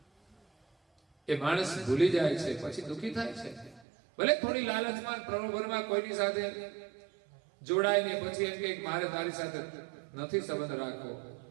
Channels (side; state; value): left; drops out; at 3.9 s